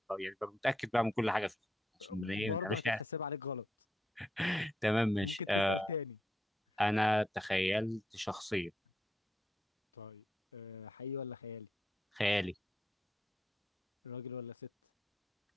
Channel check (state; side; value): normal; both; correlation 0.81